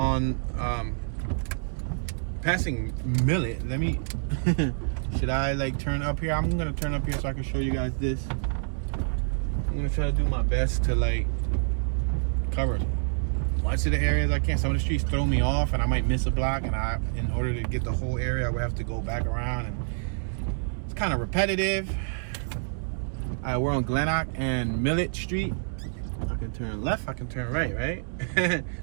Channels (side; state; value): left; silent; digital silence